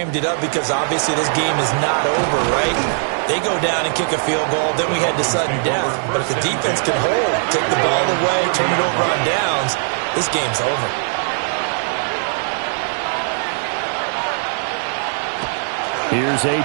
it up because obviously this game is not over, right? They go down and kick a field goal, then we head to sudden death. But if the defense can hold, take the ball away, turn it over on downs, this game's over. Here's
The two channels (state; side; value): silent; left; digital silence